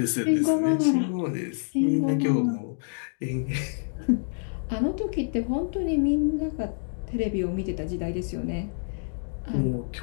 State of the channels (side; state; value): right; silent; digital silence